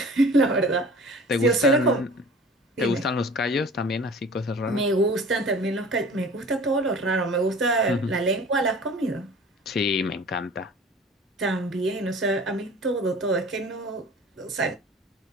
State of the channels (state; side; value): normal; both; correlation 0.43